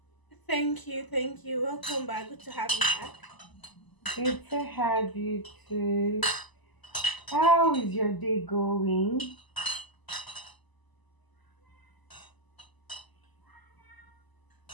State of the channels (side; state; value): right; late; 1.0 ms